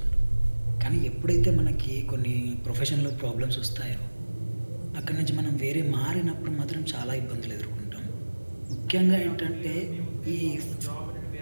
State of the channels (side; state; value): both; inverted; correlation -1.00